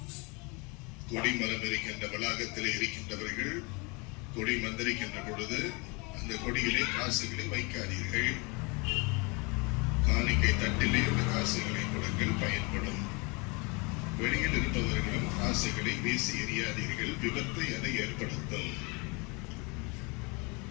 கொடிமரம் இருக்கின்ற வளாகத்திலே இருக்கின்றவர்கள் கொடி மந்திரிக்கின்ற பொழுது அந்த கொடியிலே காசுகளை வைக்காதீர்கள். காணிக்கை தட்டிலே அந்த காசுகளை கொடுங்கள், பயன்படும். வெளியில் இருப்பவர்களும் காசுகளை வீசி எறியாதீர்கள். விபத்தை அதை ஏற்படுத்தும்,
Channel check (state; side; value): quieter; right; 29.4 dB